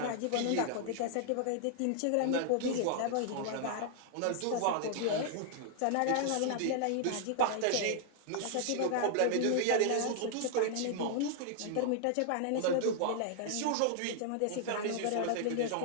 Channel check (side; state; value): both; different; correlation -0.01